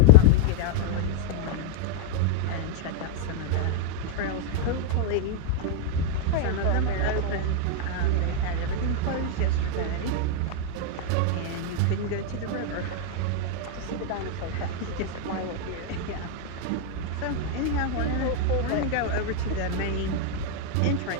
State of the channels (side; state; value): both; different; correlation 0.00